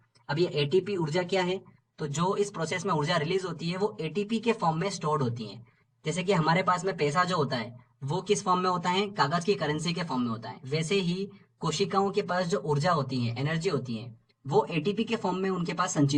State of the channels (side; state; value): both; identical; correlation 1.00